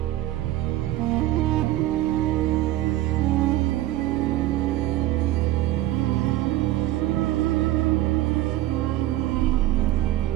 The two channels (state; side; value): quieter; left; 15.1 dB